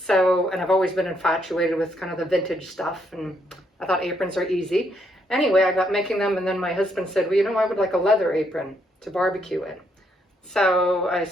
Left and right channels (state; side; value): normal; both; correlation 0.74